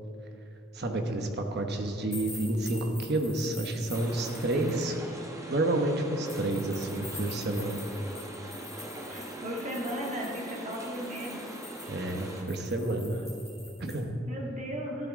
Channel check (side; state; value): both; normal; correlation 0.54